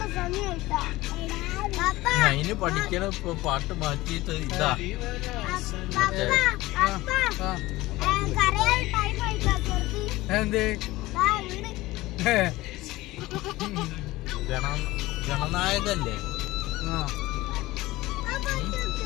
അതിന് പഠിക്കണ ഇപ്പൊ പാട്ട് മാറ്റിയിട്ട് ഇതാ എന്തേ ഗണനായകല്ലേ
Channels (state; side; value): quieter; right; 18.7 dB